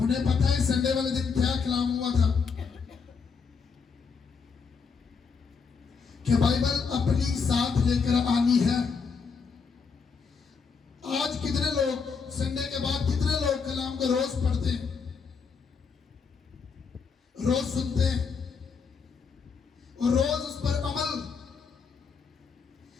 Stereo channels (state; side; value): quieter; right; 5.5 dB